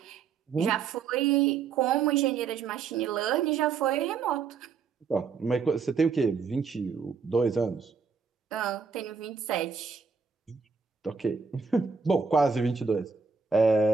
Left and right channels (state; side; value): quieter; left; 5.5 dB